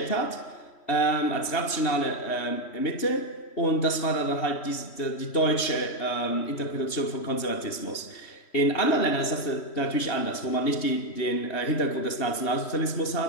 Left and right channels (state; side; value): late; right; 3.1 ms